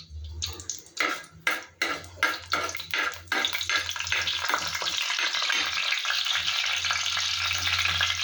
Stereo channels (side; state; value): both; identical; correlation 1.00